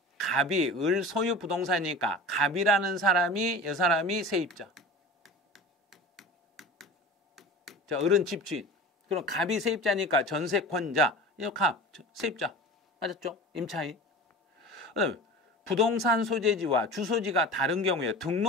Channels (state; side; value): normal; both; correlation 0.35